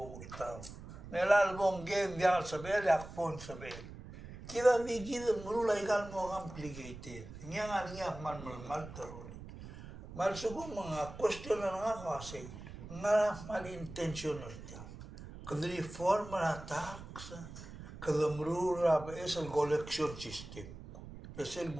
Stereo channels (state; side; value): noise; right; rumble, 13 dB below the sound